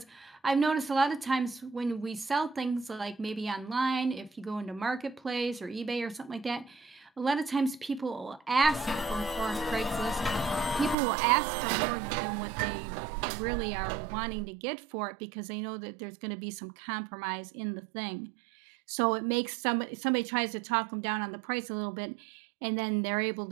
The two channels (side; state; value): left; drops out; at 11.0 s